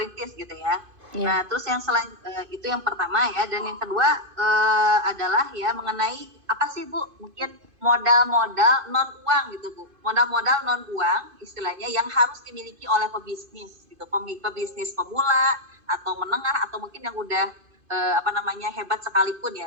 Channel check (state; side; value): late; left; 2.5 ms